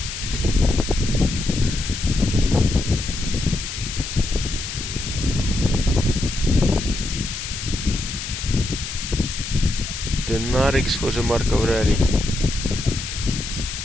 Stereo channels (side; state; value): left; noise; hiss, 7 dB below the sound